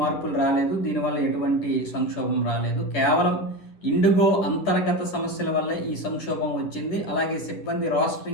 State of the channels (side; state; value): right; late; 10 ms